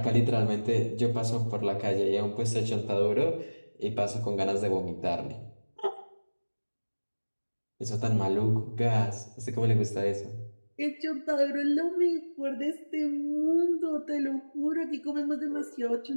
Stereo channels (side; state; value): both; inverted; correlation -1.00